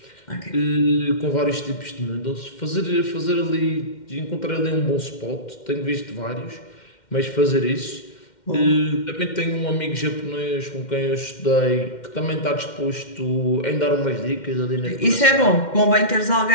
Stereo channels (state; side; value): late; right; 2.1 ms